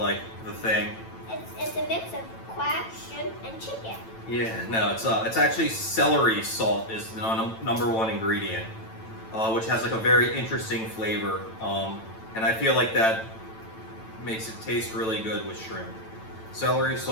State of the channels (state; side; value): late; right; 9.0 ms